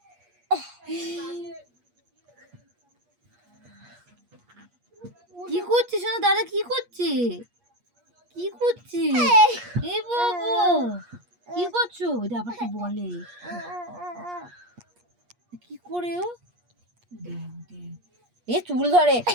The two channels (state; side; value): late; left; 8.4 ms